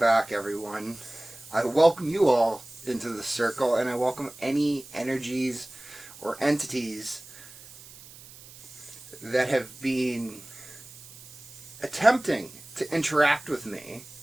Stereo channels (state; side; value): noise; right; hiss, 19 dB below the sound